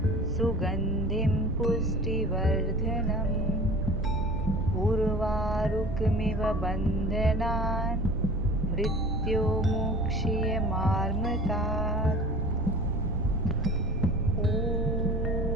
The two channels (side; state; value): right; noise; rumble, 4 dB below the sound